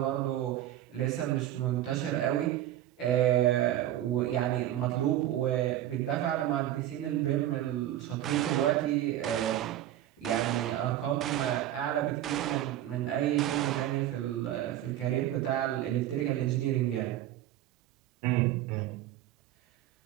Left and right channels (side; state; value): left; quieter; 12.9 dB